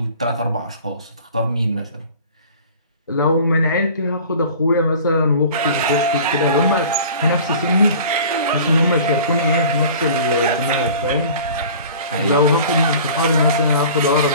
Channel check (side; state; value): both; inverted; correlation -0.43